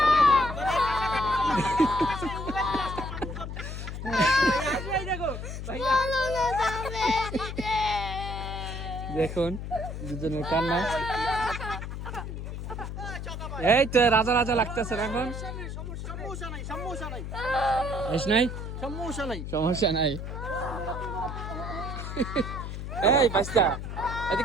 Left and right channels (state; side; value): noise; left; hum, 6 dB below the sound